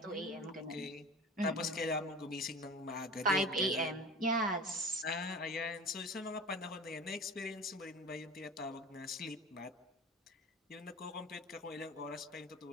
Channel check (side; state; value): both; normal; correlation 0.36